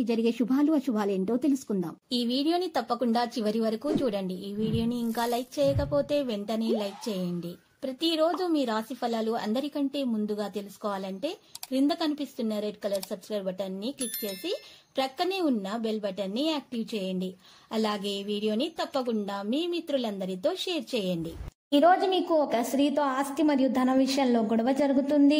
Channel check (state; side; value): identical; both; correlation 1.00